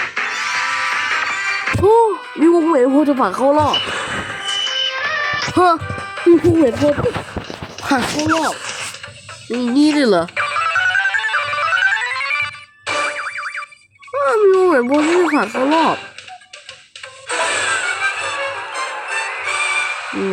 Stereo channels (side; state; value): both; identical; correlation 1.00